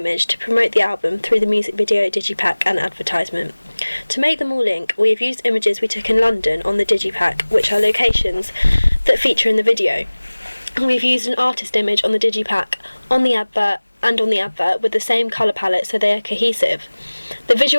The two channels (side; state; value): both; inverted; correlation -1.00